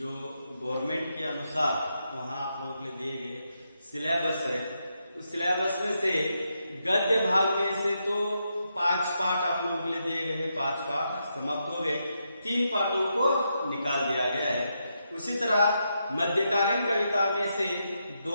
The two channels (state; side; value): inverted; both; correlation -0.83